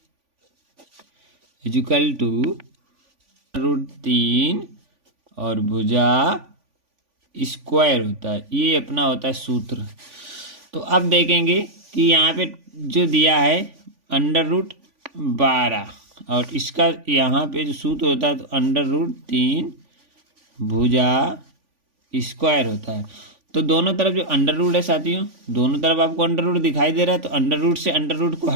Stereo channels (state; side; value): late; left; 3.5 ms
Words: इक्वल टू √3 और भुजा स्क्वायर होता है, ये अपना होता है सूत्र। तो अब देखेंगे कि यहाँ पे जो दिया है √12, और इसका यहाँ पे जो सूत्र होता है तो √3 भुजा स्क्वायर होता है। तो दोनों तरफ जो अंडर रूट है साथियों, दोनों तरफ आपको अंडर रूट दिखाई दे रहा है, तो अंडर रूट से अंडर रूट को